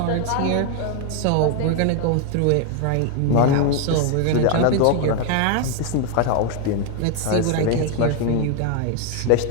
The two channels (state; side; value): different; both; correlation 0.01